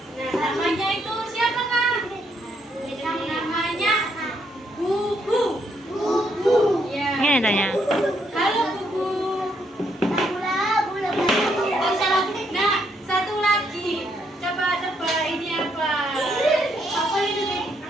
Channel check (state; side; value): normal; both; correlation 0.74